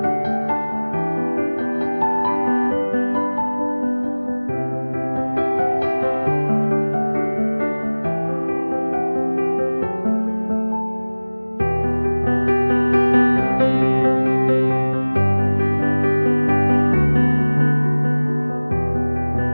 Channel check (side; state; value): both; inverted; correlation -1.00